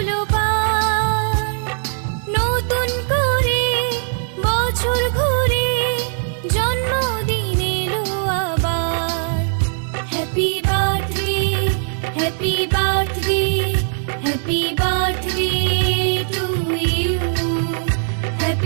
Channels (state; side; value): silent; left; digital silence